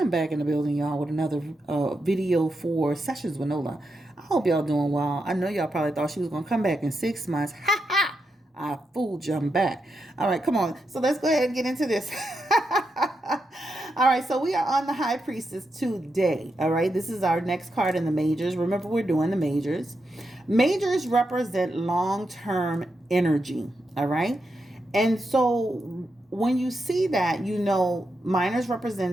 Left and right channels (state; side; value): normal; both; correlation 0.85